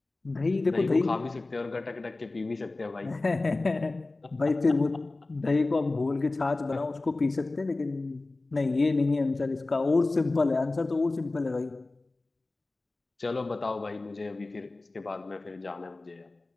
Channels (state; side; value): quieter; right; 3.2 dB